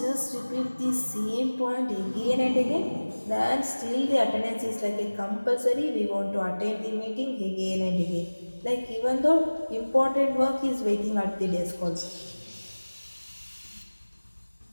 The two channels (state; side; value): inverted; both; correlation -1.00